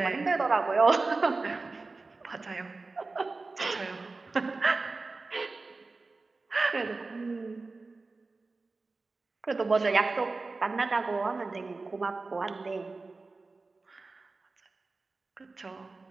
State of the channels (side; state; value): left; quieter; 3.7 dB